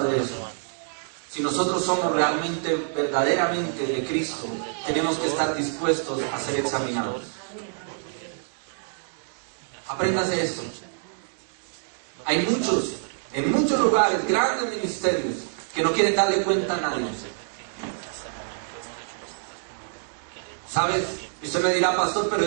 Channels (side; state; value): left; silent; 61 dB below the other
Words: de eso. Si nosotros somos realmente, verdaderamente de Cristo, tenemos que estar dispuestos a ser examinados. Apréndase esto. Hay muchos, en muchos lugares, grandes ministerios, que no quieren darle cuenta a nadie. ¿Sabes? Y usted me dirá, pastor, pero